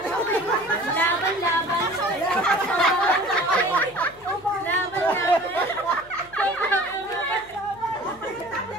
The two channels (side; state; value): left; noise; hum, 26 dB below the sound